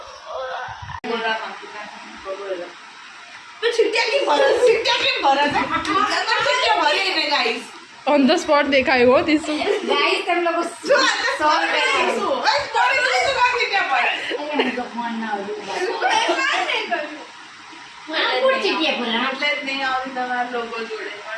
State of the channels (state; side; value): identical; both; correlation 1.00